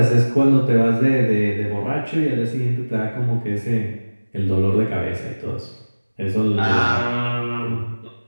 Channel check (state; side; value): inverted; both; correlation -1.00